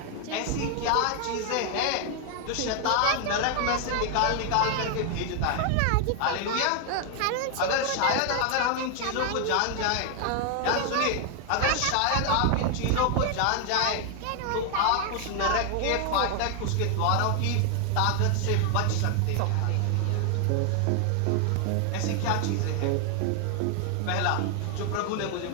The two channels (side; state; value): both; different; correlation 0.00